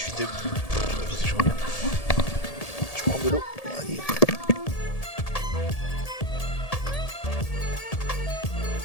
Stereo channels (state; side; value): late; right; 1.8 ms